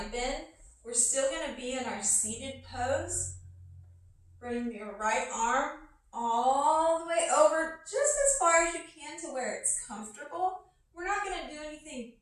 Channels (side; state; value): both; identical; correlation 1.00